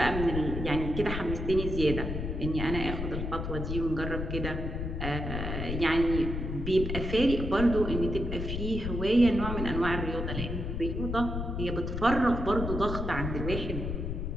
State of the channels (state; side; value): noise; left; rumble, 3 dB below the sound